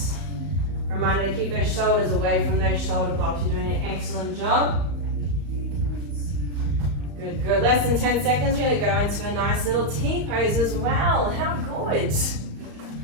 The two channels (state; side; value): late; left; 35 ms